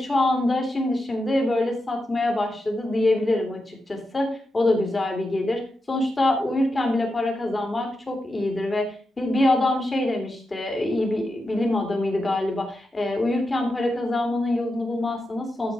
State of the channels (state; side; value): normal; both; correlation 0.88